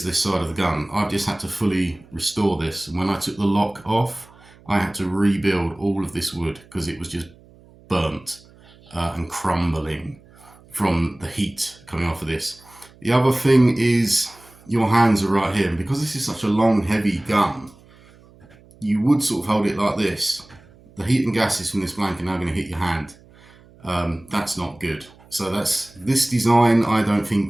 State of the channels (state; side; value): noise; right; hum, 26 dB below the sound